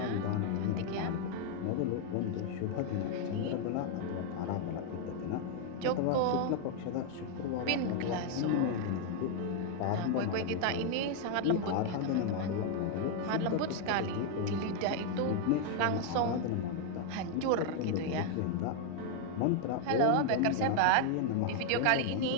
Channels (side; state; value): both; different; correlation 0.00